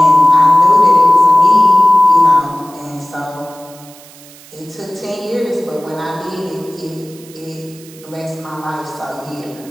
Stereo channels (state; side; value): noise; right; hiss, 22 dB below the sound